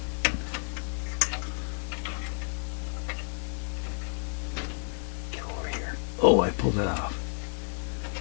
pulled it off.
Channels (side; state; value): right; silent; digital silence